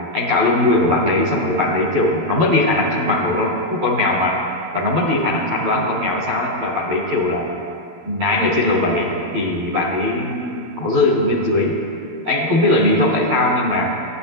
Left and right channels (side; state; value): left; late; 12 ms